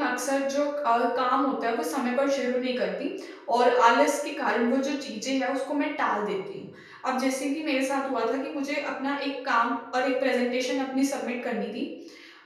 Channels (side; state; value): both; identical; correlation 1.00